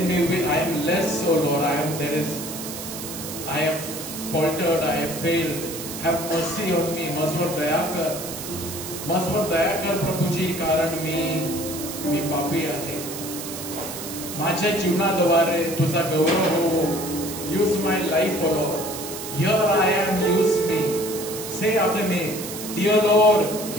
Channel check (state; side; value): noise; right; hiss, 9 dB below the sound